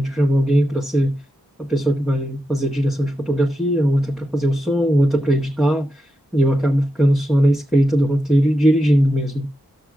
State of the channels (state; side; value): normal; both; correlation 0.88